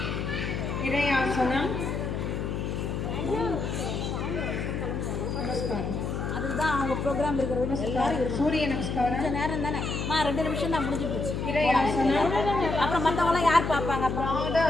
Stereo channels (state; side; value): noise; left; hum, 2 dB below the sound